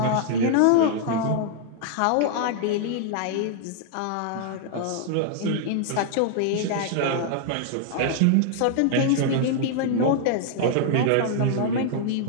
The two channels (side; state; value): both; different; correlation -0.01